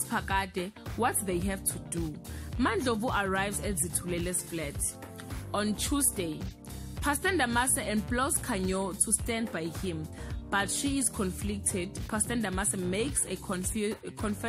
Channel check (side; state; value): both; identical; correlation 1.00